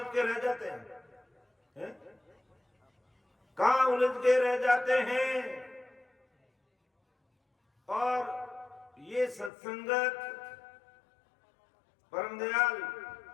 के रह जाते हैं, कहाँ उलझ के रह जाते हैं। और ये सत्संगत परम दयाल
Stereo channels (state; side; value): drops out; right; at 9.5 s